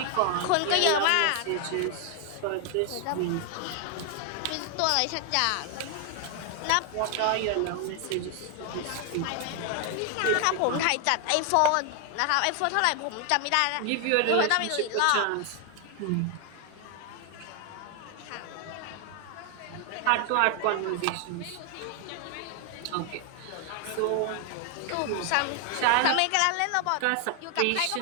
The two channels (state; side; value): different; both; correlation 0.00